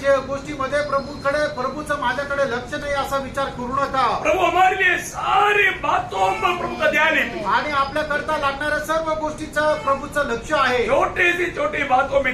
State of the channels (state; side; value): identical; both; correlation 1.00